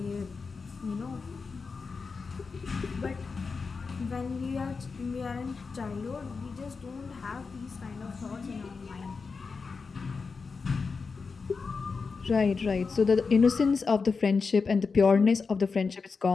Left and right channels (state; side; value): quieter; right; 4.8 dB